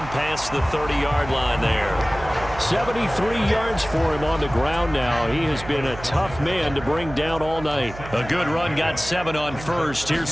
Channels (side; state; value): right; noise; hum, 13 dB below the sound